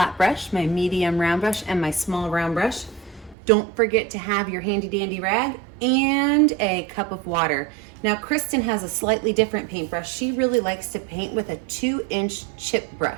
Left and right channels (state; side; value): drops out; left; at 3.4 s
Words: brush, my medium round brush, and my small round brush. Don't forget to have your handy dandy rag and a cup of water. Now, Kristen has a slightly different paintbrush. She really likes to paint with a 2-inch chip